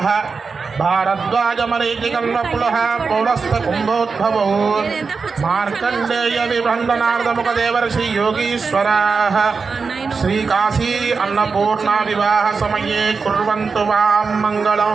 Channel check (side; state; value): left; quieter; 4.9 dB